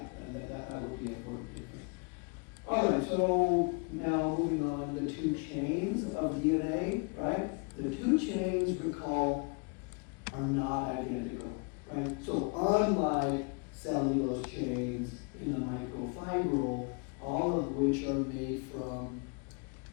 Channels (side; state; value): right; quieter; 33.9 dB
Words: that would be an important difference. All right, so now moving on, the two chains of DNA, right? The two chains, recall, are not identical, right? So unlike cellulose chains in the microfibril, all of which are made from